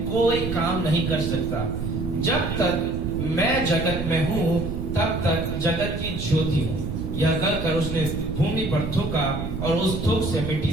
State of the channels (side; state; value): right; noise; rumble, 5 dB below the sound